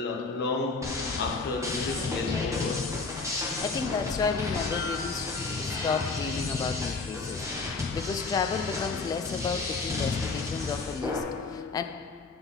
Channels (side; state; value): right; quieter; 4.0 dB